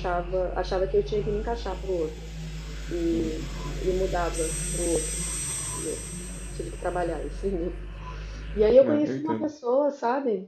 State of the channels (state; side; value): identical; both; correlation 1.00